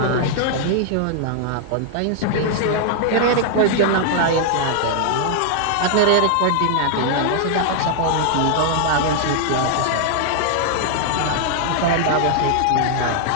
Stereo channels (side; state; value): both; different; correlation 0.00